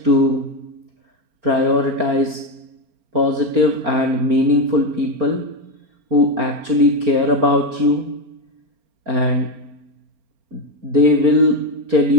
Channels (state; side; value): late; left; 4.3 ms